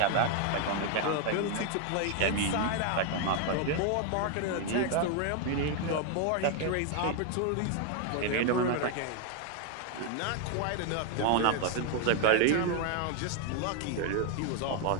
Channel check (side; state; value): both; different; correlation 0.00